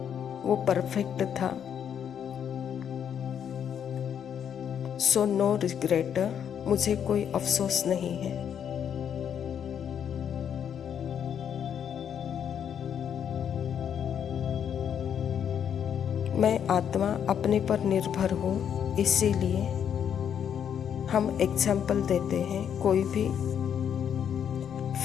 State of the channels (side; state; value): right; quieter; 8.6 dB